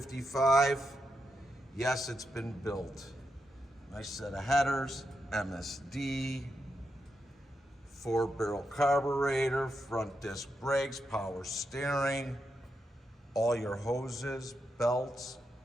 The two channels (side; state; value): both; normal; correlation 0.85